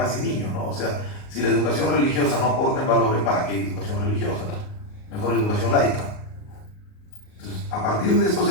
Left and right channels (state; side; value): late; right; 38 ms